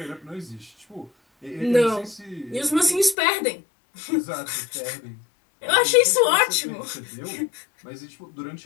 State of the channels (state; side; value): drops out; right; at 3.2 s